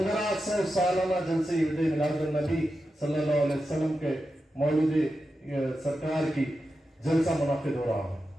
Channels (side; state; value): both; normal; correlation 0.90